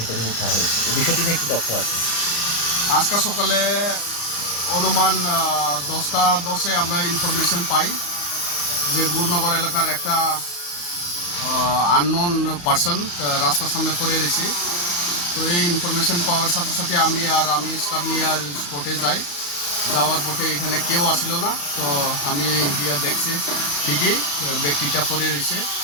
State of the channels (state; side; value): late; right; 34 ms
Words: উদ্ধার হয়েছে। এই বিষয়টি নিয়ে কি তথ্য আছে? আজকে সকালে অনুমান 10টা 10-এ আমরা ইনফরমেশন পাই যে গুরনগর এলাকার একটা আননোন পার্সন রাস্তার সামনে পড়ে রয়েছে। তো এই ইনফরমেশন পাওয়ার সাথে সাথে আমি স্টাফ নিয়ে স্পটে যাই। যাওয়ার পথে এখানে কেউ আসিল না। তো আমি গিয়ে দেখছি ঠিকই ব্যক্তিটা পড়ে রয়েছে।